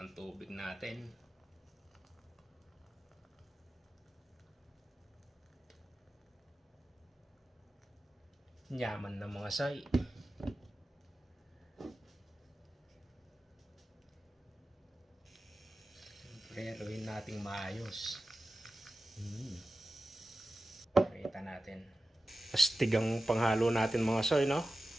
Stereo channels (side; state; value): both; normal; correlation 0.94